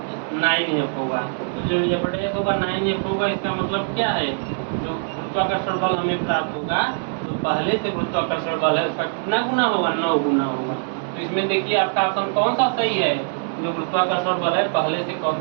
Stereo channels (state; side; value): silent; left; 64 dB below the other